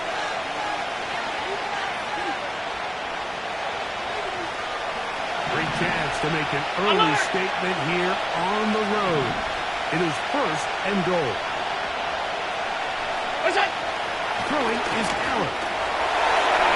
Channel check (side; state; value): both; identical; correlation 1.00